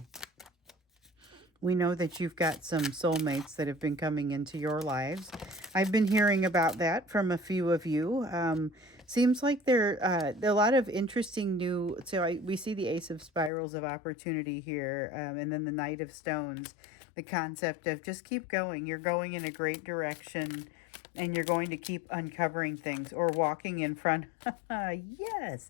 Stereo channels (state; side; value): drops out; right; at 13.5 s